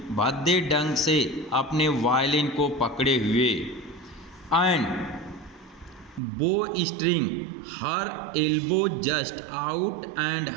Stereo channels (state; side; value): drops out; left; at 6.2 s